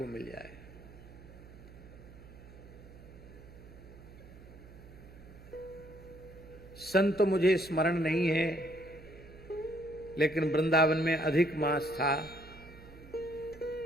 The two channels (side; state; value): right; noise; hum, 18 dB below the sound